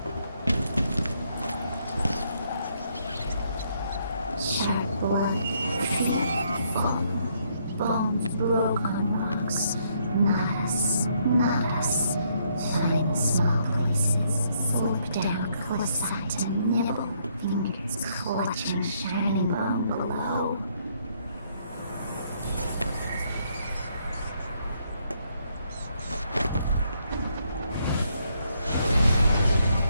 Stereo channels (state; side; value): inverted; both; correlation -0.72